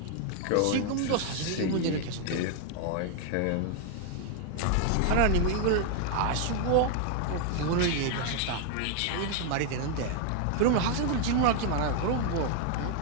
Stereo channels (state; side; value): different; both; correlation 0.00